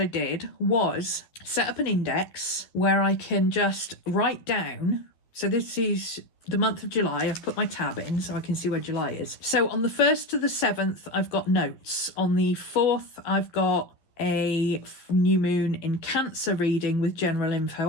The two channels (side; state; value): right; late; 11 ms